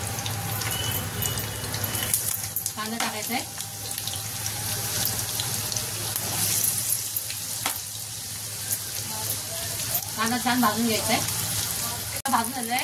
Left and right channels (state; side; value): identical; both; correlation 1.00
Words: कांदा टाकायचा आहे। कांदा छान भाजून घ्यायचा आहे। भाजून झालाय